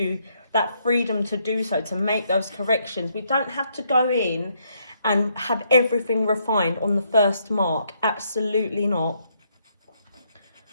that freedom to do so, to make those corrections. We don't have to go in and have everything refined on the first mark. Absolutely not.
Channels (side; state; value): both; inverted; correlation -0.74